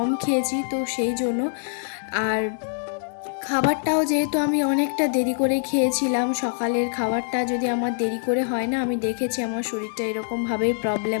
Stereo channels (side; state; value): right; silent; digital silence